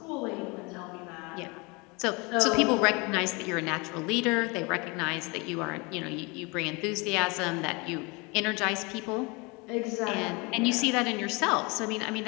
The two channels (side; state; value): right; quieter; 27.6 dB